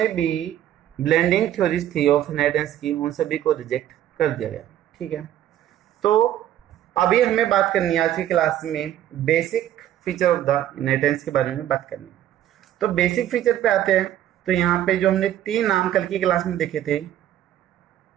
भी ब्लेंडिंग थ्योरीज थी ऑफ इनहेरिटेंस की, उन सभी को रिजेक्ट कर दिया गया। ठीक है, तो अभी हमें बात करनी है आज की क्लास में basic feature of the inheritance के बारे में बात करनी है। तो बेसिक फीचर पे आते हैं। तो यहाँ पे जो हमने 3 नाम कल की क्लास में देखे थे,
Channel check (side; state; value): left; quieter; 11.9 dB